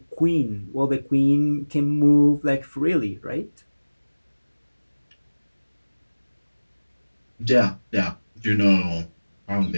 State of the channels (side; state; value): both; inverted; correlation -1.00